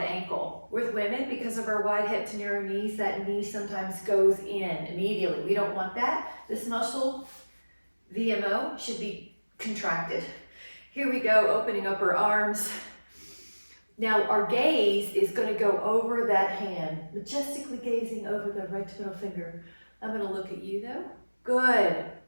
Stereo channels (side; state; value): both; inverted; correlation -1.00